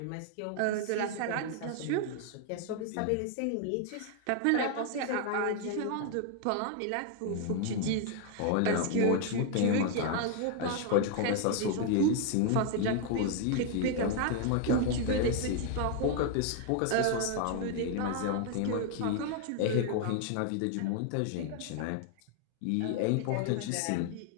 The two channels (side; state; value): both; different; correlation 0.00